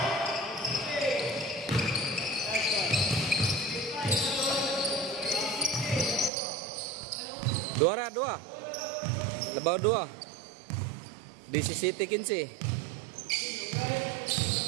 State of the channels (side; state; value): left; drops out; at 6.3 s